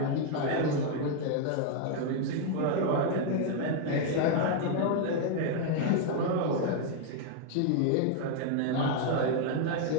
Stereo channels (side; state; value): both; different; correlation 0.00